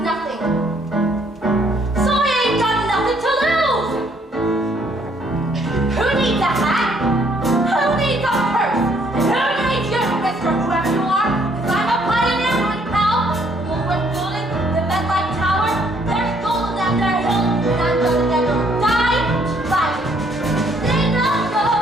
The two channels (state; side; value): normal; both; correlation 0.66